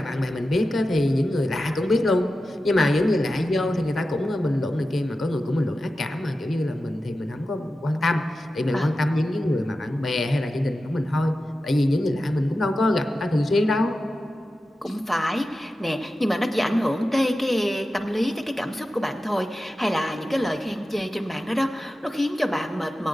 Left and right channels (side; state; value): both; normal; correlation 0.93